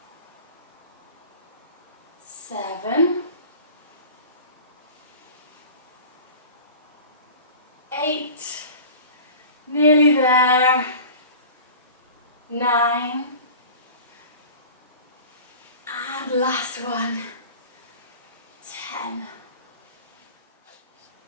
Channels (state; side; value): inverted; both; correlation -0.39